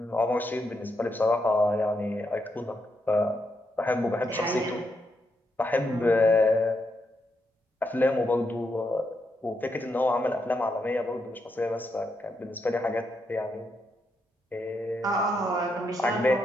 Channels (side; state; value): both; normal; correlation 0.81